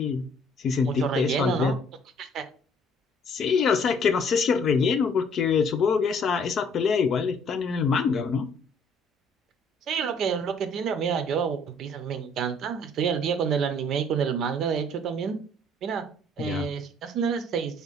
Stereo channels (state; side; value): normal; both; correlation 0.59